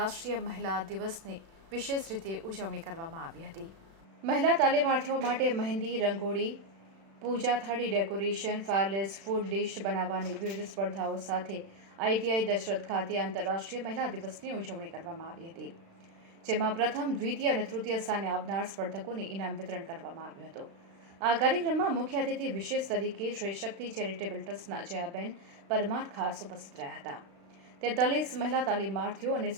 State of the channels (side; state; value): left; late; 36 ms